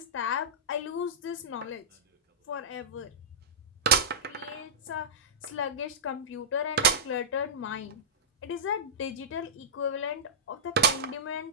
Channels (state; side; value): normal; both; correlation -0.15